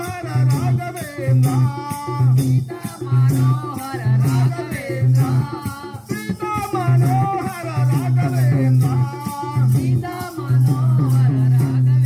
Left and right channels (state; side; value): identical; both; correlation 1.00